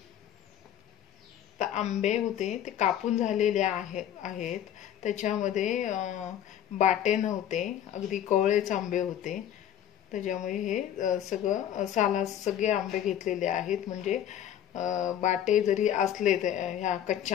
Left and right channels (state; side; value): quieter; right; 10.6 dB